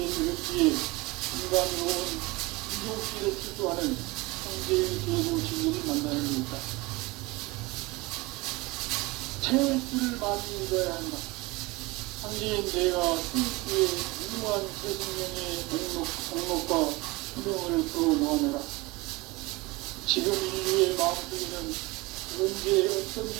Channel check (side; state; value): left; quieter; 23.2 dB